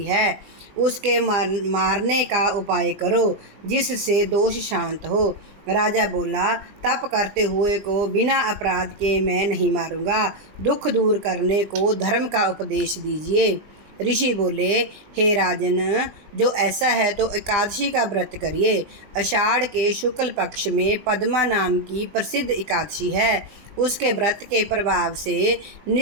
है। उसके मारने का उपाय करो, जिससे दोष शांत हो। राजा बोला, तप करते हुए को बिना अपराध के मैं नहीं मारूंगा। दुख दूर करने को धर्म का उपदेश दीजिए। ऋषि बोले, हे राजन, जो ऐसा है तो एकादशी का व्रत करिए। आषाढ़ के शुक्ल पक्ष में पद्मा नाम की प्रसिद्ध एकादशी है। उसके व्रत के प्रभाव से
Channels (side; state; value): left; late; 20 ms